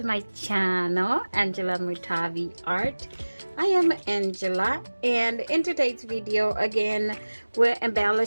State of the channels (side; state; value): both; inverted; correlation -1.00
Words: my channel, Angela Mutavi Art. I am Angela, and in today's video again we're